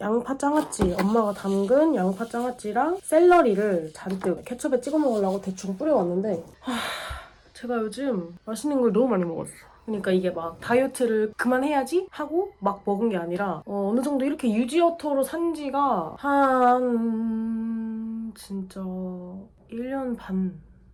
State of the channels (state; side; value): identical; both; correlation 1.00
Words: 장아찌, 엄마가 담근 양파 장아찌랑 샐러리를 잔뜩 케첩에 찍어 먹으려고 대충 뿌려왔는데 제가 요즘 맛있는 걸 너무 많이 먹었어. 그러니까 이게 막 다이어트를 그만해야지 하고 막 먹은 게 아니라 어느 정도 이렇게 유지어터로 산 지가 한 진짜 1년 반